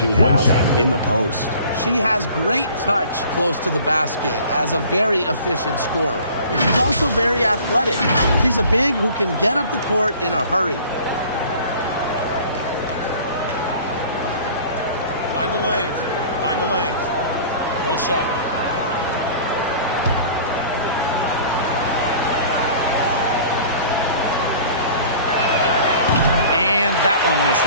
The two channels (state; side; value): inverted; both; correlation -0.46